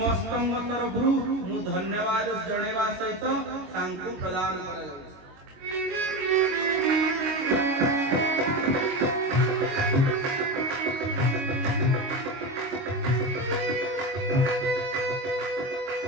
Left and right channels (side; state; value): left; late; 22 ms